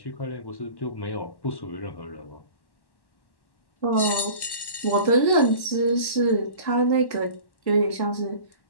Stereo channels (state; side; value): late; right; 1.1 ms